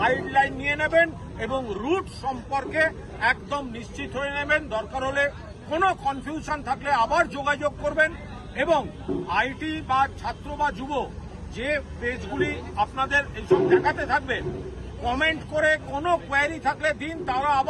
নিয়ে নেবেন এবং রুট সম্পর্কে একদম নিশ্চিত হয়ে নেবেন। দরকার হলে কোনো কনফিউশন থাকলে আবার যোগাযোগ করবেন। এবং আইটি বা ছাত্র বা যুব যে পেজগুলি আপনাদের এইসব দেখাতে থাকবে, কমেন্ট করে কোনো কোয়ারি থাকলে দিন, তারা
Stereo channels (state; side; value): identical; both; correlation 1.00